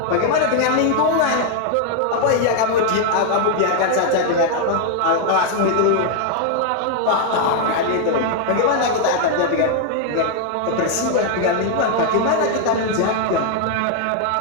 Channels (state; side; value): different; both; correlation 0.00